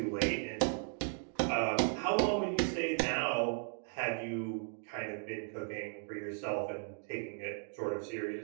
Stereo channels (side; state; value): left; silent; 54 dB below the other